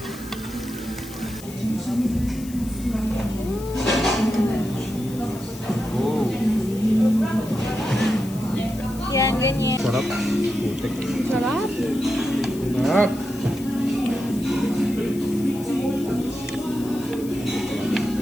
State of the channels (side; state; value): left; noise; hiss, 17 dB below the sound